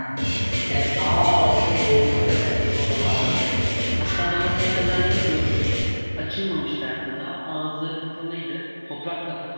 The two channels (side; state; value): both; inverted; correlation -1.00